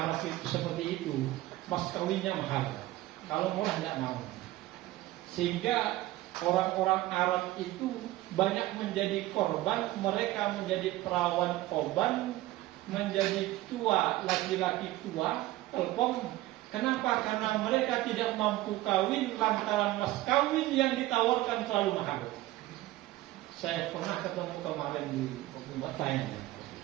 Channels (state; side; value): quieter; left; 17.0 dB